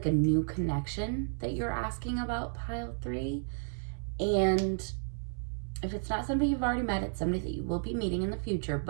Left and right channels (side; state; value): left; silent; 56 dB below the other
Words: a new connection that you're asking about, pile 3. And if it's not somebody you've already met, it's somebody that you will be meeting in the future.